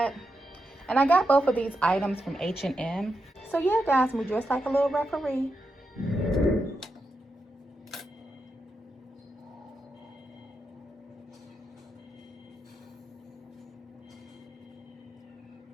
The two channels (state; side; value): normal; both; correlation 0.86